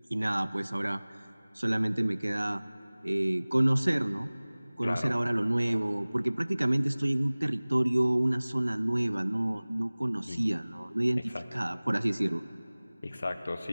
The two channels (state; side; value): inverted; both; correlation -1.00